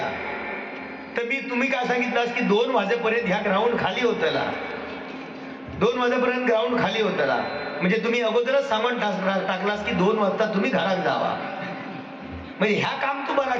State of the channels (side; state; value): both; identical; correlation 1.00